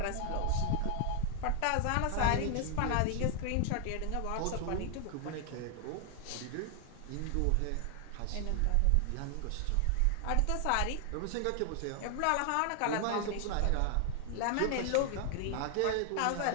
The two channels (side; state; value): both; different; correlation 0.00